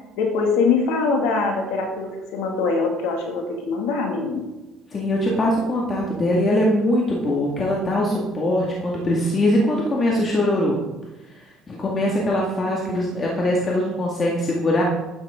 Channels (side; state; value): both; normal; correlation 0.62